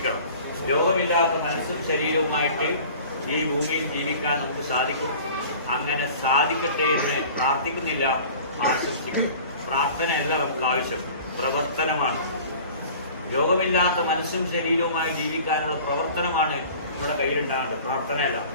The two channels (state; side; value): inverted; both; correlation -0.44